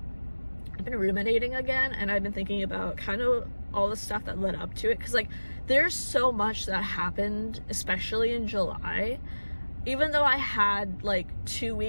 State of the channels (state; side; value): inverted; both; correlation -1.00